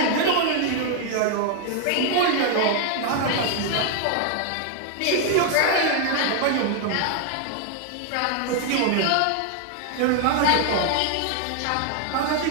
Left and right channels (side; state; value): both; different; correlation 0.00